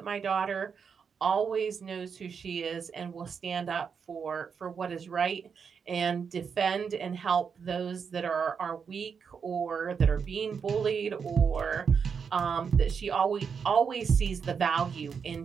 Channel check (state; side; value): quieter; left; 6.3 dB